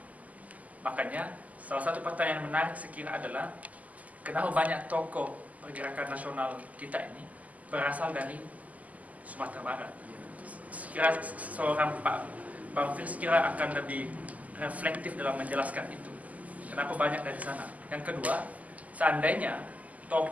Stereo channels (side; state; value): left; late; 0.075 ms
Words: Makanya salah satu pertanyaan menarik sekira adalah kenapa banyak tokoh pergerakan nasional kita ini berasal dari Sumatera Barat. Sekira seorang Pak Bang Fir sekira akan lebih reflektif dalam menjelaskan itu. Kenapa banyak dari sana? Yang kedua, seandainya